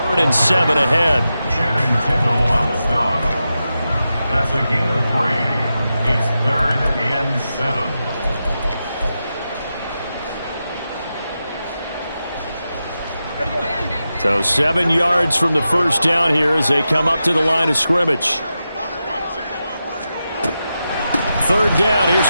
and 7 ahead. Channing Tindall on the stop. That's a gain of 3. It's 3rd and 7. So 7 yards from the first down here as they come up to the line of scrimmage. 3rd down.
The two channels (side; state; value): both; inverted; correlation -0.90